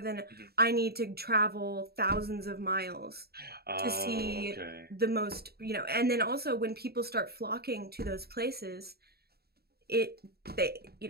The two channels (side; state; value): left; late; 0.46 ms